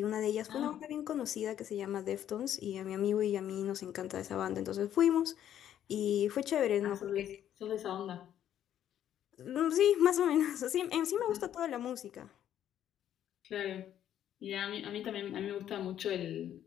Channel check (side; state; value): right; quieter; 10.7 dB